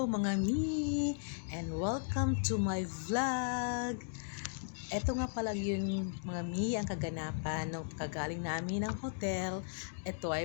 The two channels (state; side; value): silent; right; digital silence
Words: mga mi! And welcome to my vlog! Ito nga pala yun mga mi, ang kaganapan ng kagaling namin ng hotel. Ito